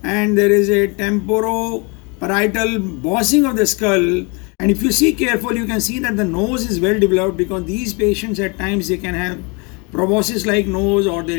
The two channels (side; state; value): right; quieter; 31.1 dB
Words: and there is a temporoparietal bossing of the skull. And if you see carefully, you can see that the nose is well developed, because these patients at times they can have proboscis like nose, or